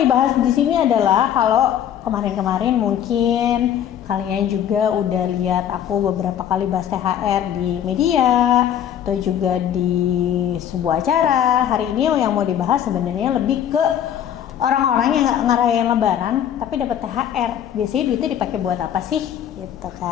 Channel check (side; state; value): right; quieter; 10.0 dB